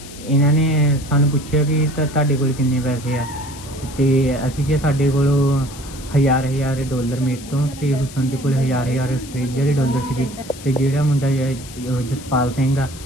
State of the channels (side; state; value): left; noise; hiss, 16 dB below the sound